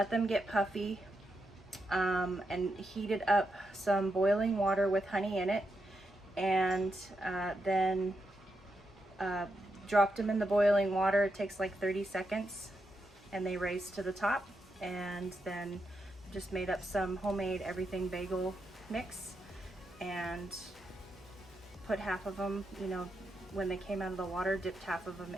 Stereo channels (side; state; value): both; normal; correlation 0.84